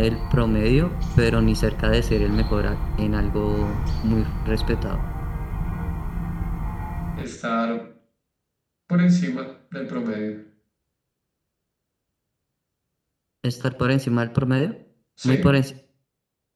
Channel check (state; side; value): identical; both; correlation 1.00